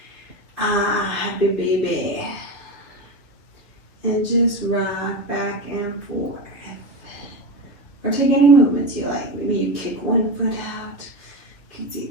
Happy baby. And just rock back and forth. Or take any movements you like. Maybe you kick one foot out, kick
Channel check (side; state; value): right; late; 2.8 ms